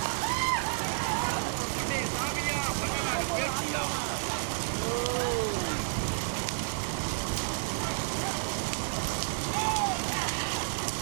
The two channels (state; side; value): silent; left; digital silence